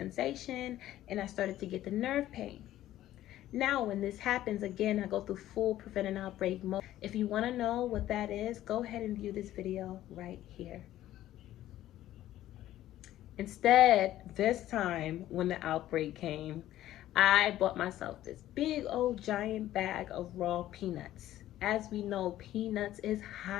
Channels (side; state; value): right; quieter; 13.7 dB